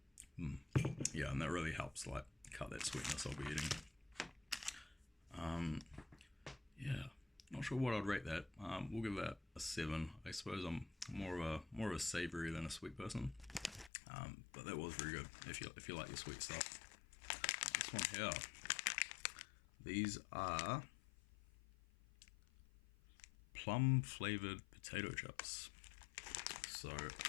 Yeah, and that really helps like cut that sweetness I'll be eating. Yeah, not sure what I'd rate that. We'll give that a 7. I suppose I'm more of a savory than a sweet person. But that was very good if you like your sweet stuff. This one here, these are plum flavored potato chips. So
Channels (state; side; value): drops out; right; at 13.9 s